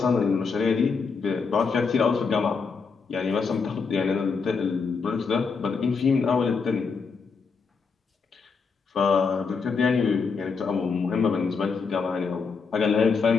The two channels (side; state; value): right; quieter; 5.1 dB